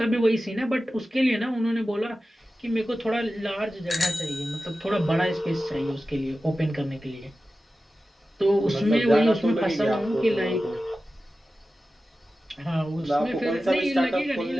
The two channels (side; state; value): both; normal; correlation 0.94